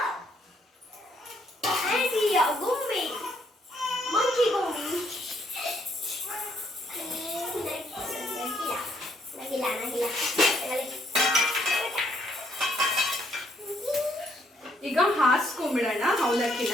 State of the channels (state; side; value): normal; both; correlation 0.71